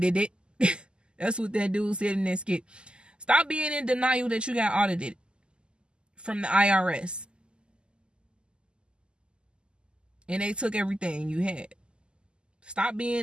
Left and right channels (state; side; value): late; left; 0.049 ms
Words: That's what that dude said in that skit. Stop being in denial that you got audited from the IRS. And they took everything you had. Stop